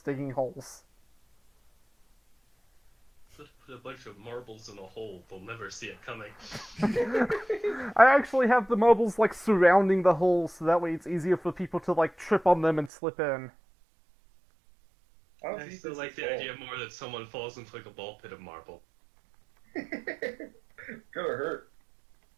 digging holes. Put a bunch of marbles in a hole. They'll never see it coming. I actually have the marbles, surrounding the hole, so that way it's easier for people to, trip on them and slip in. I don't I think still this like is the all. idea more that someone falls into like a ball pit of marble. Gonna hurt.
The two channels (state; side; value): drops out; left; at 12.9 s